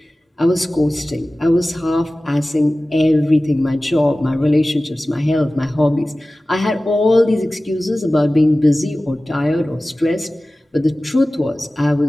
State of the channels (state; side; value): normal; both; correlation 0.97